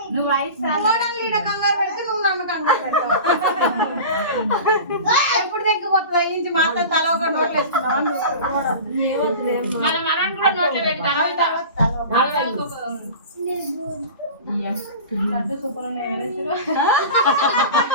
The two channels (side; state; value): both; inverted; correlation -0.35